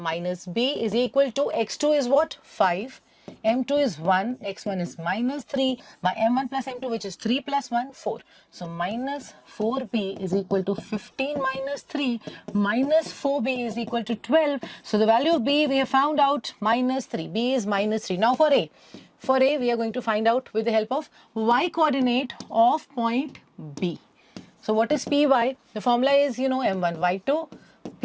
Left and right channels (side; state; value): both; identical; correlation 1.00